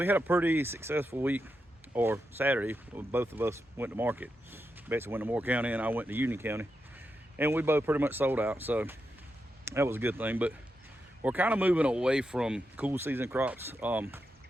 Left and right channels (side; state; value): both; normal; correlation 0.86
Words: had a pretty successful week, or Saturday. Both of us went to market. Betsy went to Moore County and I went to Union County, and we both pretty much sold out. So that was a good thing. But we're kind of moving away from cool season crops. Our